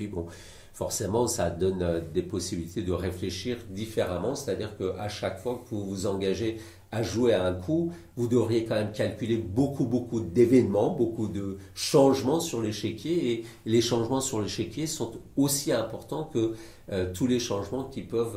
bon, forcément, ça donne des possibilités de réfléchir différemment, c'est-à-dire qu'à chaque fois que vous vous engagez à jouer à un coup, vous devriez quand même calculer beaucoup d'événements, beaucoup de changements sur l'échiquier, et les changements sur l'échiquier sont aussi importants que tous les changements qui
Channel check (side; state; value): both; identical; correlation 1.00